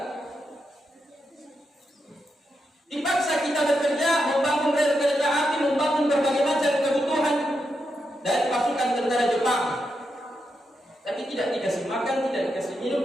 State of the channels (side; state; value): both; normal; correlation 0.84